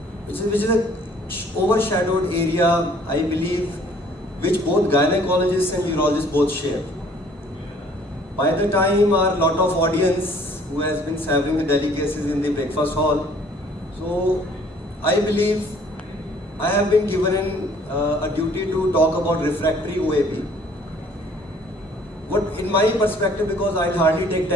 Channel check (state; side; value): normal; both; correlation 0.57